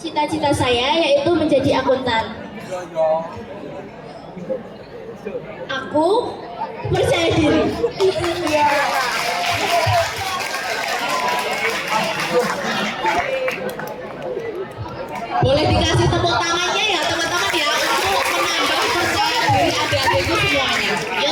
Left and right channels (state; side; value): identical; both; correlation 1.00